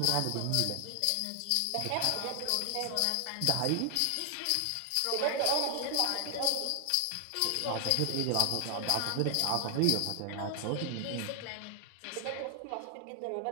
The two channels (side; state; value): both; different; correlation 0.00